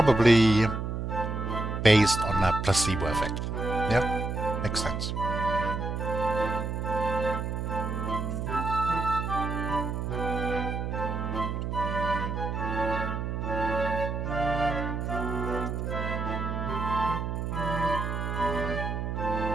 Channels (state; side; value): noise; right; hum, 3 dB below the sound